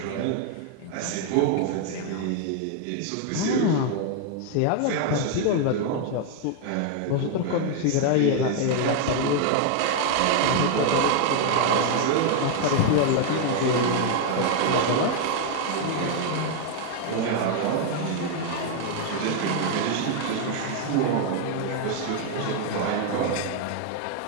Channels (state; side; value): different; both; correlation 0.00